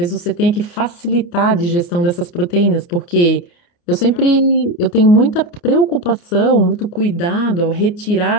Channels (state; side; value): late; right; 28 ms